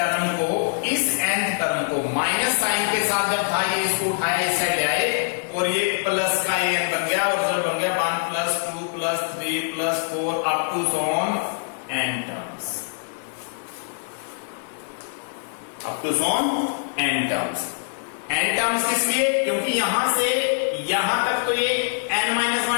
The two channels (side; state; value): right; silent; 60 dB below the other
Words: को, इस nth टर्म को माइनस साइन के साथ जब था ये इसको उठाया इस साइड आए और ये प्लस का an बन गया, और जब बन गया 1 plus 2 plus 3 plus 4 up to so on n terms, up to so on n टर्म्स। n टर्म्स किस लिए? क्योंकि यहां से यहां तक तो ये